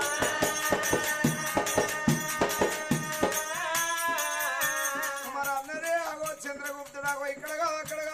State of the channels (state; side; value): identical; both; correlation 1.00